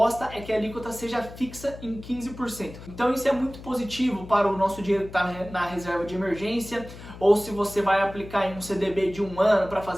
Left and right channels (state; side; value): noise; left; hum, 15 dB below the sound